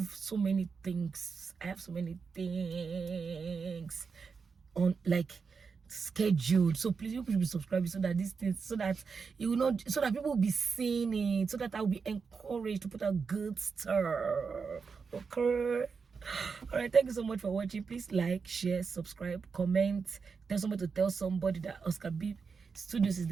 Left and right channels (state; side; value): quieter; left; 5.3 dB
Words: so many things. On, like, scheduled, so please you should be subscribing, so that these things, so that you will not, so that people will be seeing it, so that I'll be encouraged to put out good stuff. Okay, all right, thank you so much for watching. Please like, share, subscribe, comment, tell somebody to tell somebody that Oscar B.Studios is